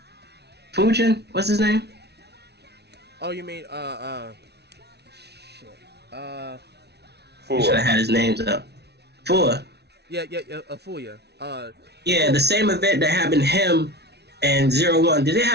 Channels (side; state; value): left; late; 0.49 ms